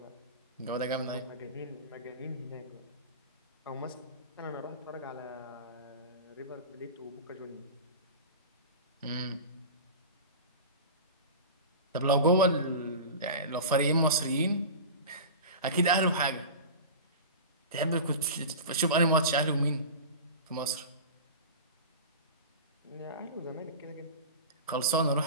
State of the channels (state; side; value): inverted; both; correlation -0.31